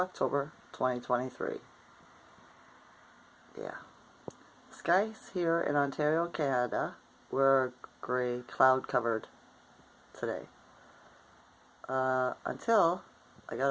2023. Yeah. Skies here in Ontario, Canada were gray, cloud covered today. Until I got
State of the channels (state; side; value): identical; both; correlation 1.00